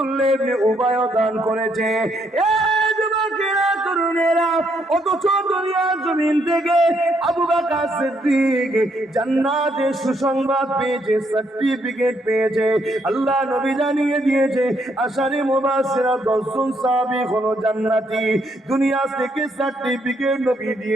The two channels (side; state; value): both; normal; correlation 0.73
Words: ইবনে উবাই দান করেছে। অথচ দুনিয়ার জমিন থেকে আবু বকর সিদ্দিক জান্নাতের সুসংবাদ পেয়েছে, সার্টিফিকেট পেয়েছে। আল্লাহ নবী জানিয়ে দিয়েছে আশারে মুবাশশিরা 10 জন সাহাবী হলো জান্নাতি। দুনিয়া থেকে সার্টিফিকেট নবী